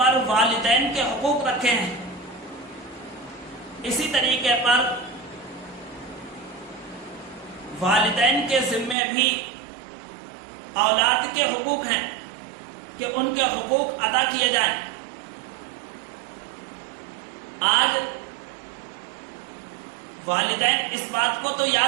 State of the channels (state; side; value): drops out; left; at 9.0 s